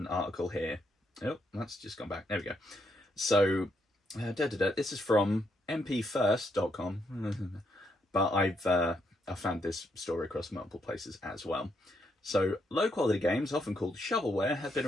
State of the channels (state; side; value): normal; both; correlation 0.77